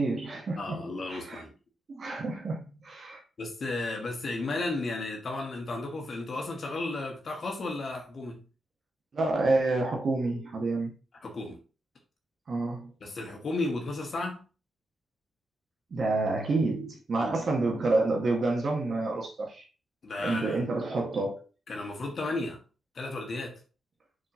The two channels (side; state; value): both; normal; correlation 0.85